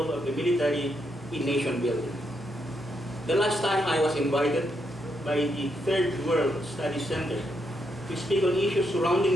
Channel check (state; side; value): normal; both; correlation 0.79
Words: of the military in nation building. The last time I was invited by the Third World Studies Center to speak on issues